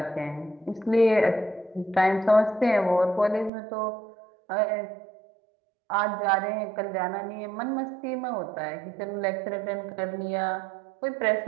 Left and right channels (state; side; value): drops out; left; at 3.5 s